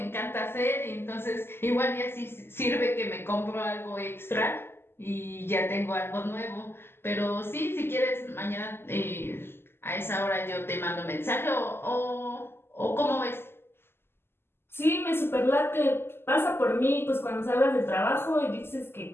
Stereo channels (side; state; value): right; late; 0.11 ms